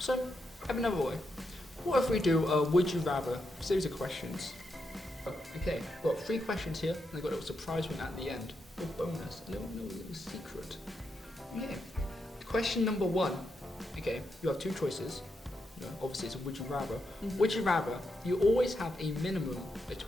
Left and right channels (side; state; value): both; normal; correlation 0.83